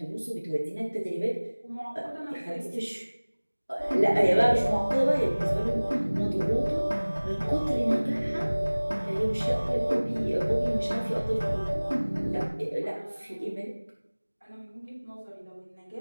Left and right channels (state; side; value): inverted; both; correlation -1.00